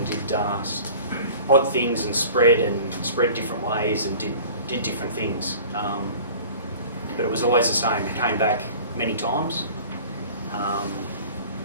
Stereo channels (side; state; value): both; inverted; correlation -0.43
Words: did odd things and spread different ways and did different things. But it was always the same. It came back many times